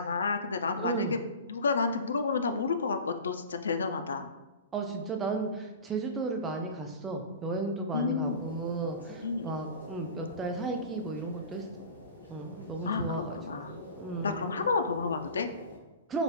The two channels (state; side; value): inverted; both; correlation -0.35